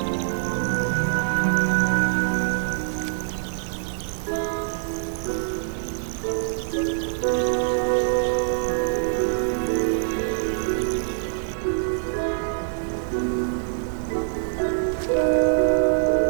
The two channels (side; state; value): left; silent; 62 dB below the other